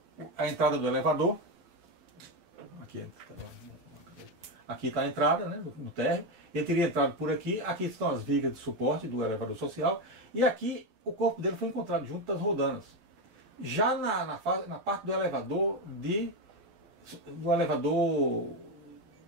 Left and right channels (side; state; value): left; late; 12 ms